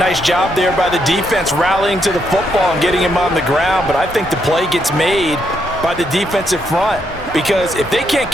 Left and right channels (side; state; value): both; normal; correlation 0.77